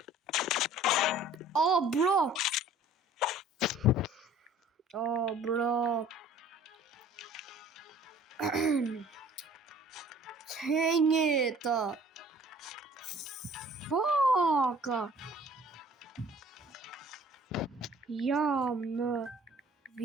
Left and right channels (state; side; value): normal; both; correlation 0.51